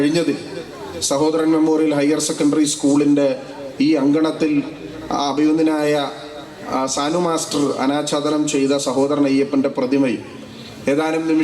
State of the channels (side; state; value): both; identical; correlation 1.00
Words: സഹോദരൻ മെമ്മോറിയൽ ഹയർ സെക്കൻഡറി സ്കൂളിൻ്റെ ഈ അങ്കണത്തിൽ അഭിനന്ദനായ സാനു മാസ്റ്റർ അനാച്ഛാദനം ചെയ്ത സഹോദരൻ അയ്യപ്പൻ്റെ പ്രതിമയും ഏതാനും